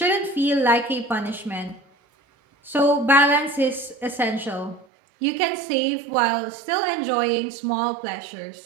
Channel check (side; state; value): left; drops out; at 4.9 s